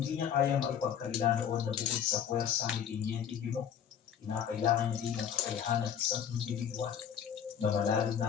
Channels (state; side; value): quieter; right; 8.6 dB